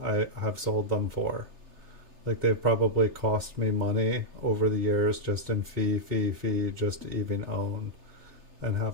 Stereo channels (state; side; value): late; left; 3.3 ms